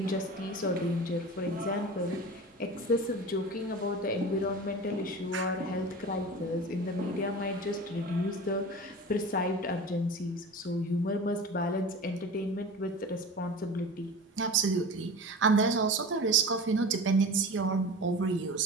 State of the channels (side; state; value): both; normal; correlation 0.34